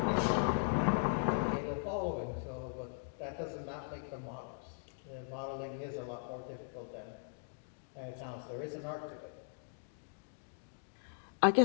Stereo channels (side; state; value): right; silent; digital silence